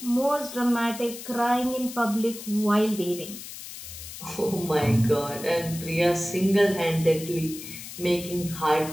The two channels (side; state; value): left; noise; hiss, 12 dB below the sound